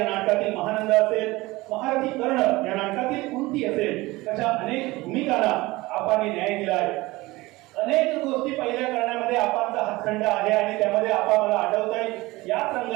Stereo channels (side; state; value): left; quieter; 20.6 dB